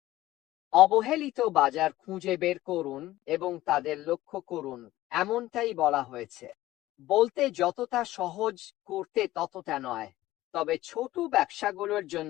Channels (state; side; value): quieter; right; 16.0 dB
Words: অবহেলিত বাজার খুঁজে বের করুন এবং তাদের লক্ষ্য করুন, এমনটাই বলা হয়েছে। বলতে যতটা সহজ, করতে ততটা নয়। তবে ছোট ব্যবসাগুলোর